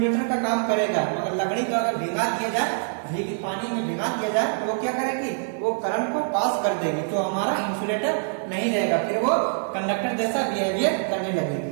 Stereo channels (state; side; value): silent; left; digital silence